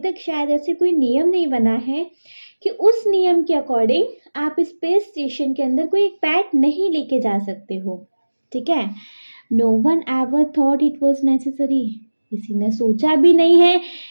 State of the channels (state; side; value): inverted; both; correlation -1.00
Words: शायद ऐसे कोई नियम नहीं बना है कि उस नियम के अकॉर्डिंग आप स्पेस स्टेशन के अंदर कोई एक पेट नहीं लेके जा सकते हो, ठीक है। No one ever thought it was necessary, किसी ने सोचा भी नहीं है